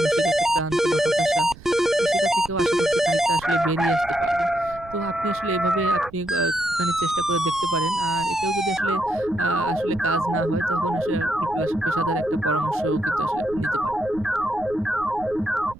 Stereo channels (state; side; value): noise; right; rumble, 18 dB below the sound